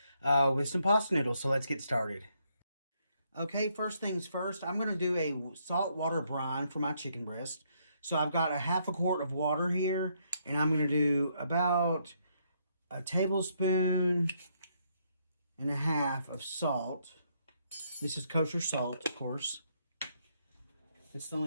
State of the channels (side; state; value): both; inverted; correlation -0.74